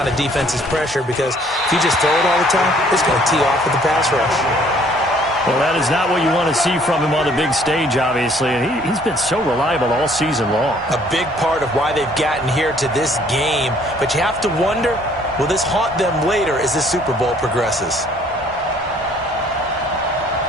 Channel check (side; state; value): both; normal; correlation 0.60